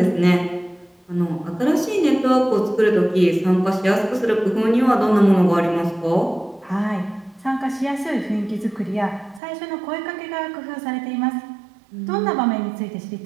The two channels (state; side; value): drops out; left; at 9.4 s